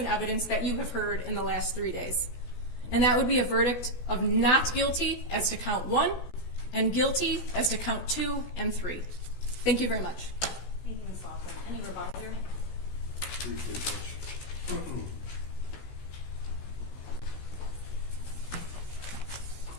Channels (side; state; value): right; late; 16 ms